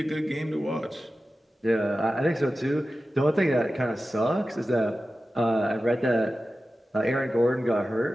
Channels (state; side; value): normal; both; correlation 0.94